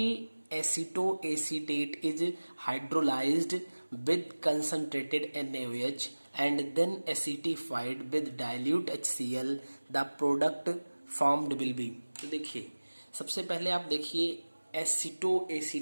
acetoacetate is hydrolysed with concentrated NaOH and then acetified with dilute HCl, the product formed will be। तो देखिए, सबसे पहले आप देखिए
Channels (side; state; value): both; inverted; correlation -1.00